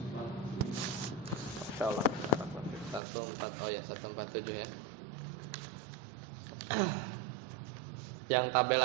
Insyaallah 14, oh ya 147 ya. Yang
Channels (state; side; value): drops out; left; at 3.0 s